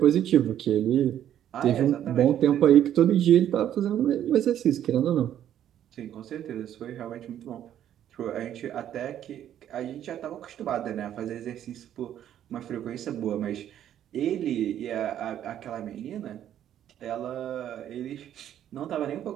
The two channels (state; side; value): quieter; left; 10.8 dB